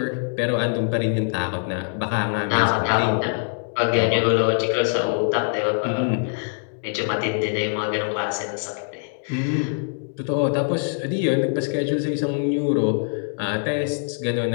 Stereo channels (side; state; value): right; silent; digital silence